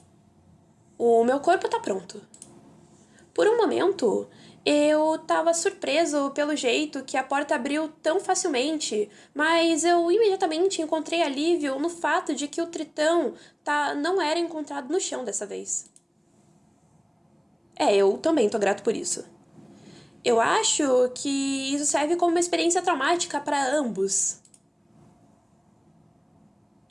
O meu corpo tá pronto. Por um momento, eu tava surpreso pelo jeito que a porta abriu tão facilmente, mas eu imediatamente encontrei alívio no fato de que o tritão não era encontrado no chão dessa vez. Eu também tô grato por isso. Eu acho que isso serve como uma experiência traumática para ambos.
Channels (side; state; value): both; identical; correlation 1.00